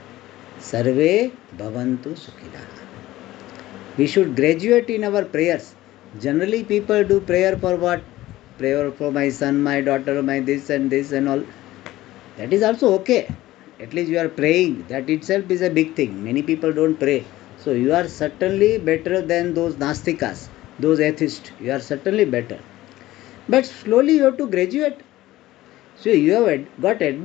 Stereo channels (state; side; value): quieter; right; 16.3 dB